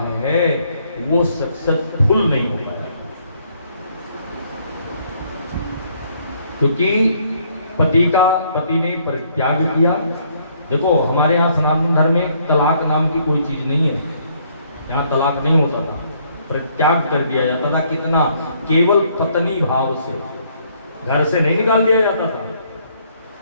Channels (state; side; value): inverted; both; correlation -0.67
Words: है वो सक्सेसफुल नहीं हो पाया, क्योंकि पति ने परित्याग किया। देखो हमारे यहाँ सनातन धर्म में तलाक नाम की कोई चीज नहीं है, यहाँ तलाक नहीं होता था, परित्याग कर दिया जाता था। कितना? केवल पत्नी भाव से, घर से नहीं निकाल दिया जाता था।